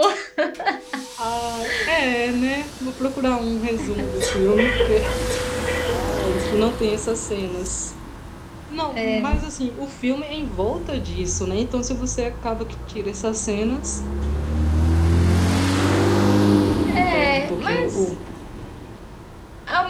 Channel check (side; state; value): both; identical; correlation 1.00